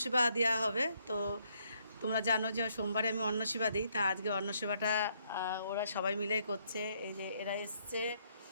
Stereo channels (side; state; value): both; inverted; correlation -0.71